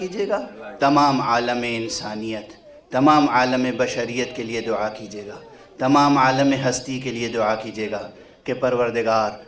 گا، تمام عالم انسانیت، تمام عالم بشریت کے لیے دعا کیجیے گا، تمام عالم ہستی کے لیے دعا کیجیے گا کہ پروردگار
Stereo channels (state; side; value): identical; both; correlation 1.00